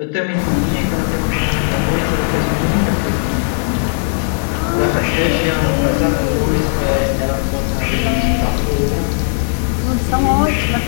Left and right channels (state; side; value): silent; right; 64 dB below the other